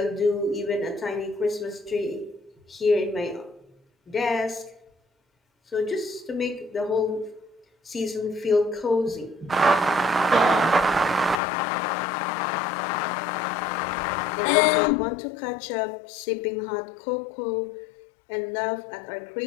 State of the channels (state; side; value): drops out; right; at 11.4 s